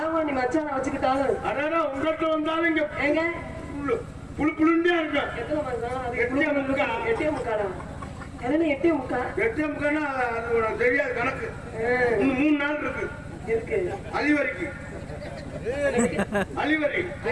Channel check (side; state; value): both; identical; correlation 1.00